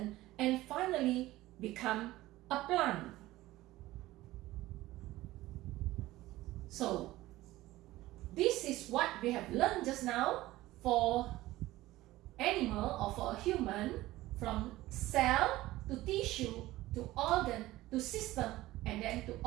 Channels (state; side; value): quieter; left; 17.1 dB